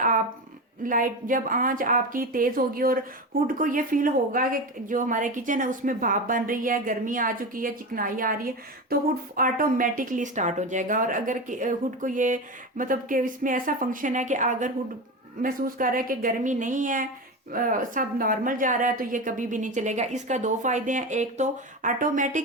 लाइट जब आंच आपकी तेज होगी और हुड को ये फील होगा कि जो हमारे किचन है उसमें भाप बन रही है, गर्मी आ चुकी है, चिकनाई आ रही है, तो हुड ऑटोमेटिकली स्टार्ट हो जाएगा। और अगर हुड को ये मतलब कि इसमें ऐसा फंक्शन है कि अगर हुड महसूस कर रहा है कि गर्मी नहीं है, सब नॉर्मल जा रहा है, तो ये कभी भी नहीं चलेगा। इसका 2 फायदे हैं, एक तो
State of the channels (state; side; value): normal; both; correlation 0.22